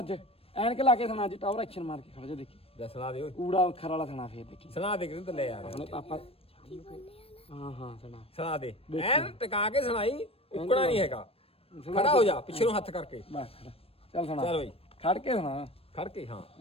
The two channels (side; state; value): right; late; 0.28 ms